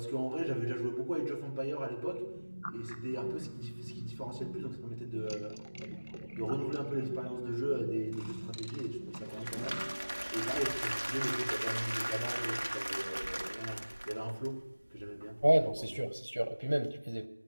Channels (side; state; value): both; inverted; correlation -1.00